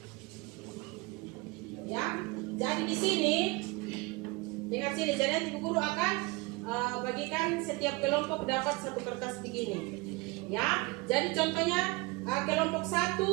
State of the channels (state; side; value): quieter; left; 24.6 dB